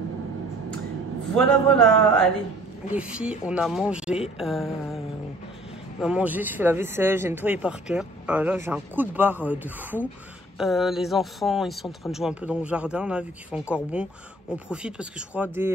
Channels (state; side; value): normal; both; correlation 0.54